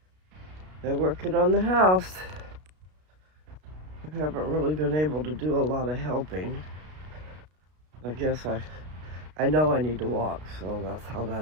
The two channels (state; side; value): late; left; 33 ms